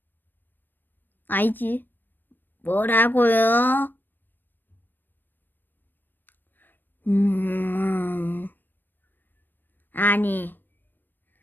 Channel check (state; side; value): late; right; 0.093 ms